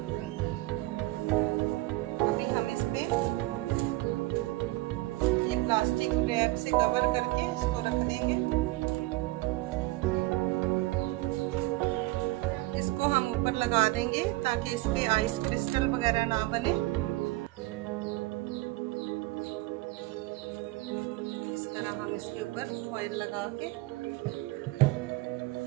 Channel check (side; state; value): left; quieter; 19.9 dB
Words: अभी हम इस पे ये प्लास्टिक रैप से कवर करके इसको रख देंगे। हम ऊपर लगा देंगे ताकि इसकी आइस क्रिस्टल वगैरह ना बने। इस तरह हम इसके ऊपर फॉइल लगा के